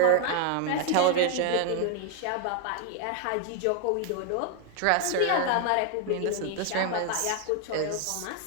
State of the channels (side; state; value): both; different; correlation 0.01